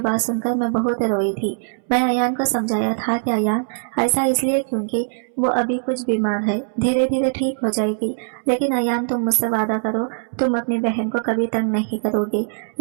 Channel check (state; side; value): silent; left; 65 dB below the other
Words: सुनकर मैं बहुत रोई थी। मैं अयान को समझाया था कि अयान ऐसा इसलिए क्योंकि वो अभी कुछ बीमार है, धीरे धीरे ठीक हो जाएगी। लेकिन अयान तुम मुझसे वादा करो, तुम अपनी बहन को कभी तंग नहीं करोगे,